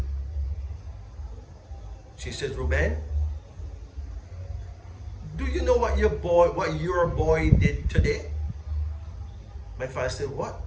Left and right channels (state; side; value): identical; both; correlation 1.00